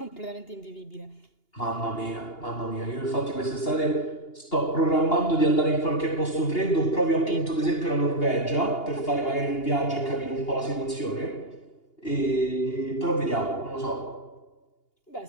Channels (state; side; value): late; right; 2.8 ms